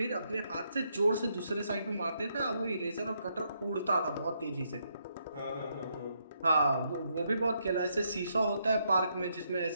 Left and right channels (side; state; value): both; inverted; correlation -0.77